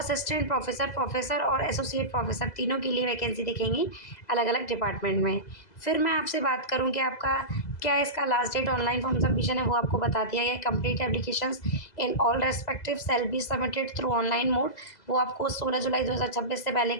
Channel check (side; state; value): right; late; 2.0 ms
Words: प्रोफेसर, प्रोफेसर और एसोसिएट प्रोफेसर तीनों के लिए वैकेंसी दिखेंगी अलग अलग डिपार्टमेंट में। फिर मैं आपसे बात करूं कि आपका क्या इसका last date online form submission है वो आपको बता दिया गया है। Complete applications in all respective shall be submitted through online mode. वो आपको 16 जुलाई 2026 से पहले